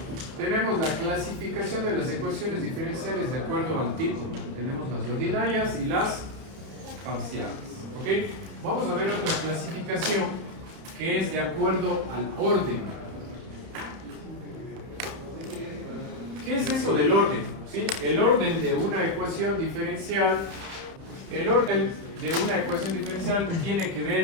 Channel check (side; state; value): left; late; 31 ms